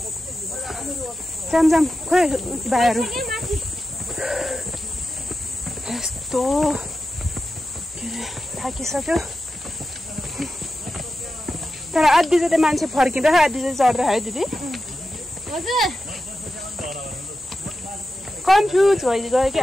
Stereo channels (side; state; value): both; normal; correlation 0.91